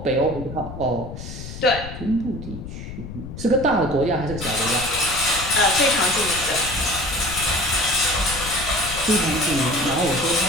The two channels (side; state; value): left; noise; rumble, 10 dB below the sound